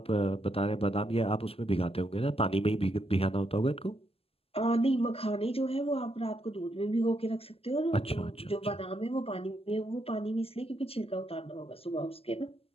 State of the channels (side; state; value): right; late; 0.28 ms